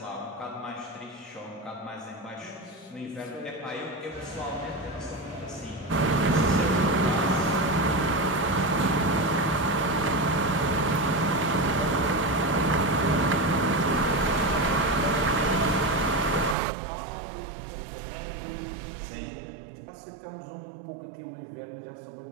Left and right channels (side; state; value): left; drops out; at 16.6 s